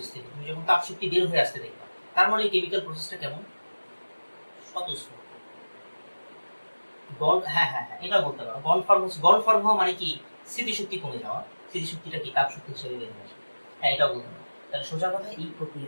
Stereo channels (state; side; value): inverted; both; correlation -1.00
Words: থেকে তুমি যখন তাপ শক্তি বের হয়ে আসতে দেখবা, তার মানে এই কেমিক্যাল প্রসেসটা কেমন? স্বতঃস্ফূর্ত। হ্যাঁ হ্যাঁ হ্যাঁ, এটা বলতে পারো। বন্ড ফর্ম হওয়া মানে কি? স্মৃতিশক্তি কমে যাওয়া। স্মৃতিশক্তিটা কি তাপ শক্তি হিসেবে বের হয়ে আসে। হ্যাঁ, এটাও বলতে পারো। তাহলে সোজা কথা, এই